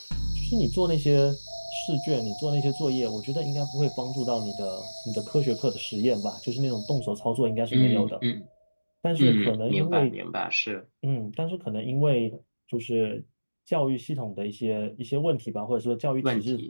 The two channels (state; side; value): inverted; both; correlation -1.00